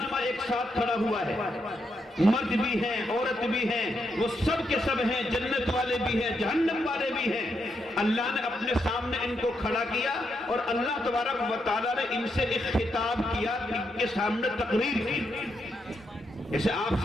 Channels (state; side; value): normal; both; correlation 0.81